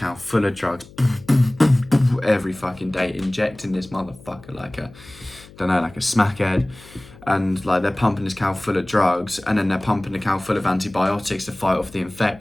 full of drugs every fucking day, injecting this motherfucker like a smackhead, and like they're pumping this cow full of drugs, and then they're pumping the cow full of antibiotics to fight off the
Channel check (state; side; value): noise; left; hum, 21 dB below the sound